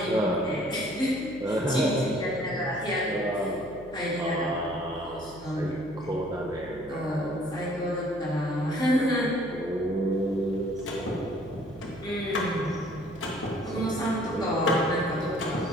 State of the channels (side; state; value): right; noise; hum, 20 dB below the sound